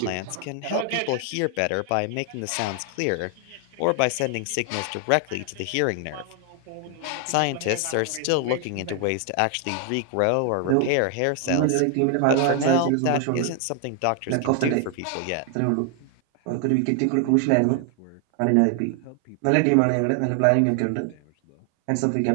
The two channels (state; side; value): different; both; correlation 0.00